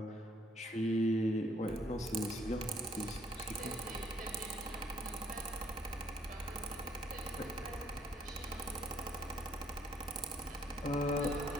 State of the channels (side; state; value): both; normal; correlation 0.66